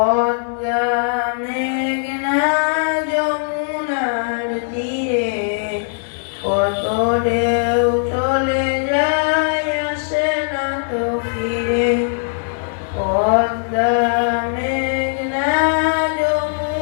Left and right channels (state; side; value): silent; right; digital silence